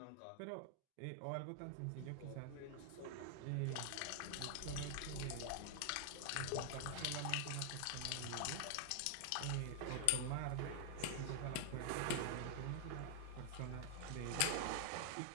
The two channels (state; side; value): different; both; correlation 0.00